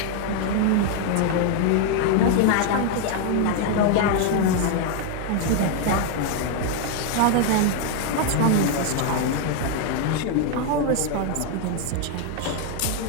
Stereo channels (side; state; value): both; different; correlation 0.01